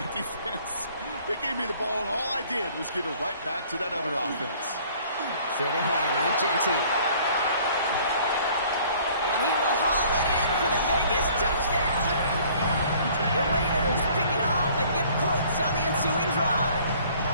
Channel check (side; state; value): both; inverted; correlation -0.55